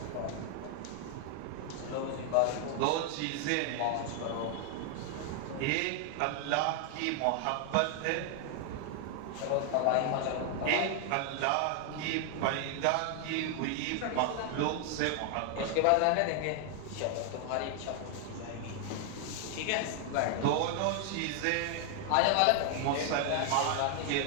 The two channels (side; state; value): both; different; correlation 0.00